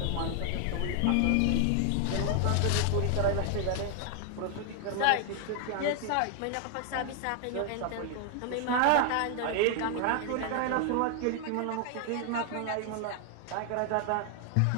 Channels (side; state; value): both; different; correlation 0.00